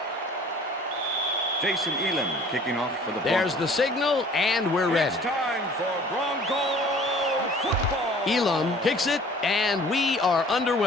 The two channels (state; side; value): normal; both; correlation 0.50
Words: Jason Elam kicking off for the Broncos. There's the signal, and we're ready. It's time for Bronco football. Elam kicks it, and we are